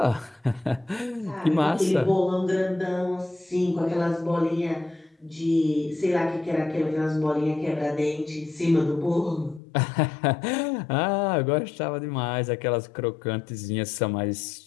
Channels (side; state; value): right; drops out; at 9.6 s